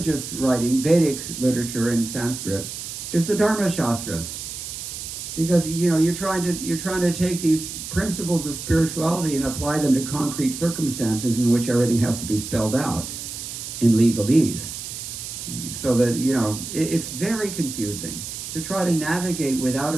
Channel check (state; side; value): noise; right; hiss, 8 dB below the sound